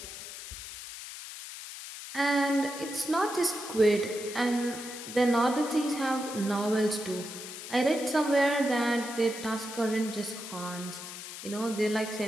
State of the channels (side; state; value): left; noise; hiss, 11 dB below the sound